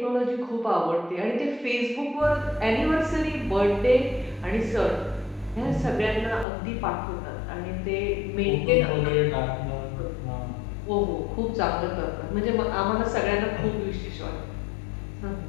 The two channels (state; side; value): drops out; right; at 6.5 s